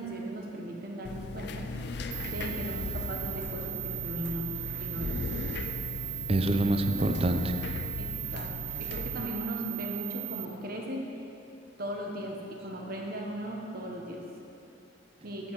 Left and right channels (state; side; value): normal; both; correlation 0.58